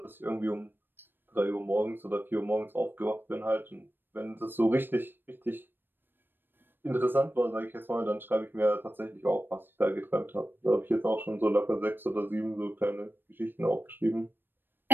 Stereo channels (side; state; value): left; late; 0.096 ms